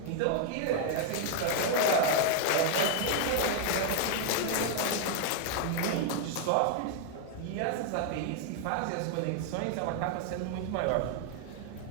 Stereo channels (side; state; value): both; different; correlation 0.00